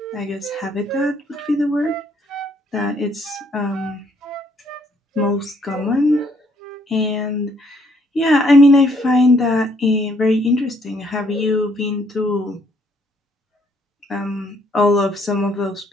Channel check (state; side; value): normal; both; correlation 0.68